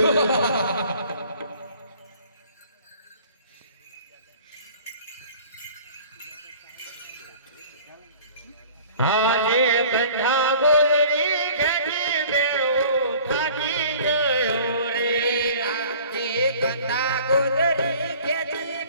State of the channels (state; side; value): inverted; both; correlation -0.48